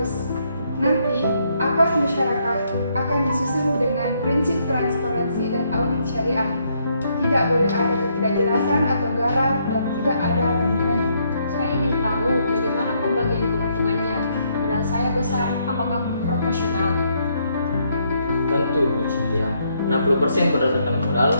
Nanti, akad masyarakat akan disusun dengan prinsip transparansi dan audit syariah. Tidak boleh ada ketidakjelasan atau garam dan tidak ada hubungannya. Saya ingin tahu bagaimana pembagian keuntungannya. Modal saya besar, apakah proporsional? Tentu Bu Cynthia, 60% berdasarkan modal,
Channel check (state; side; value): inverted; both; correlation -0.73